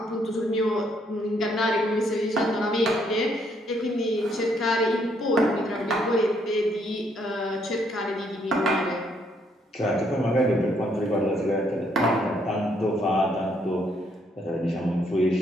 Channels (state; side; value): normal; both; correlation 0.71